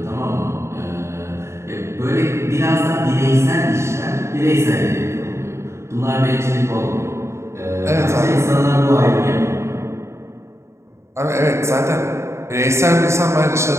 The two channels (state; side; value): late; left; 0.13 ms